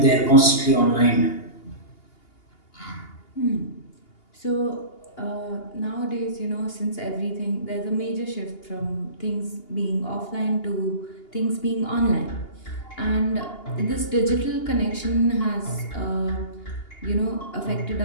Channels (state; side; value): late; right; 2.8 ms